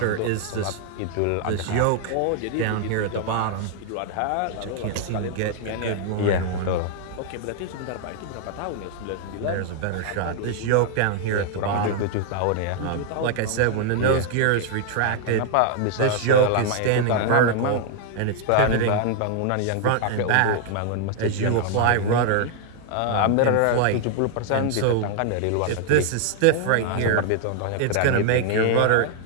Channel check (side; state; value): both; different; correlation 0.00